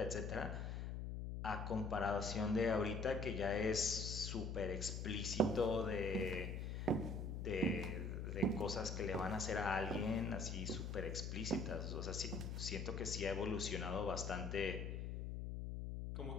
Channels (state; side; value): noise; left; hum, 4 dB below the sound